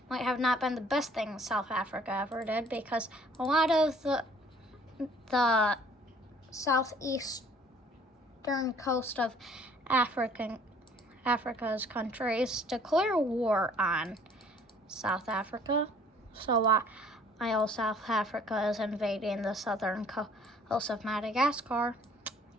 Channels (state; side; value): normal; both; correlation 0.56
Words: might have not been the best thing South Africa ever did, because a lot of the southeastern coast of Africa's countries declare war on South Africa. So while South Africa is invading the southern coast of Madagascar,